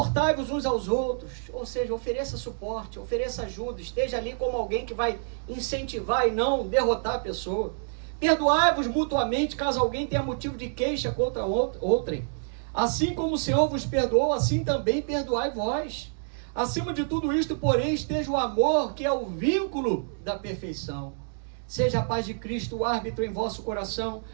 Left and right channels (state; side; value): silent; left; digital silence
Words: uns aos outros, ou seja, ofereça suporte, ofereça ajuda, esteja ali como alguém que vai incentivar e não derrotar a pessoa. Perdoai-vos mutuamente, caso alguém tenha motivo de queixa contra outrem. Assim como o Senhor vos perdoou, assim também perdoai vós. Acima de tudo isto, porém, esteja o amor, que é o vínculo da perfeição. Seja a paz de Cristo o árbitro em vosso coração,